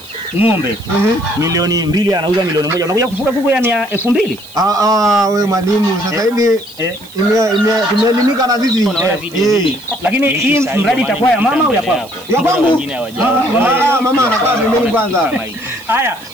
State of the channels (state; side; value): noise; right; hiss, 22 dB below the sound